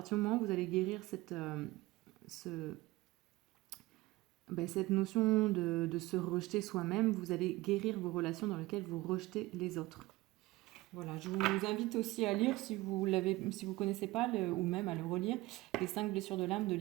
du moment où vous allez guérir cette notion de se rejeter soi-même, vous allez guérir vos relations dans lesquelles vous rejetez les autres. Voilà, je vous invite aussi à lire, si vous ne connaissez pas, ou même à le relire, Les 5 blessures de l'âme de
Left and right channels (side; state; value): left; quieter; 19.8 dB